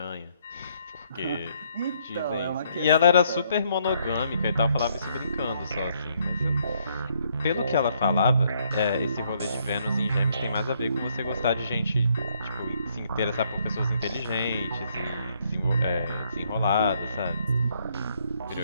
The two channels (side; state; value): both; inverted; correlation -0.70